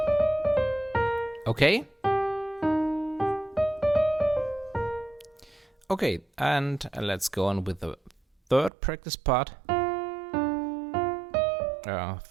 Okay? Okay, and let's go on with the third practice part.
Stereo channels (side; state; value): left; drops out; at 8.7 s